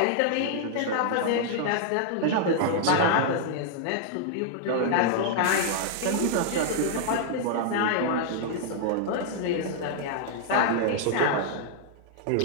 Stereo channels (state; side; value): different; both; correlation -0.01